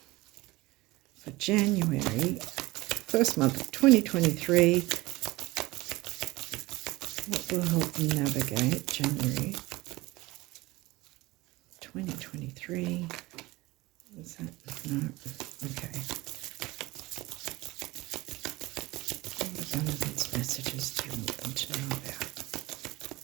for January first month of 2023. What will help them navigate January 2023? Is that? No. Okay. What abundance messages do you want them to know about?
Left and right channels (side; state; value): left; quieter; 20.3 dB